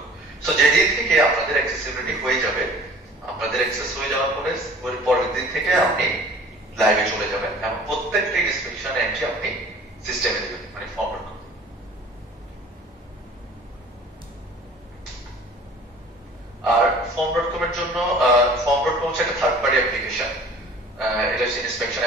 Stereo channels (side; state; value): both; normal; correlation 0.47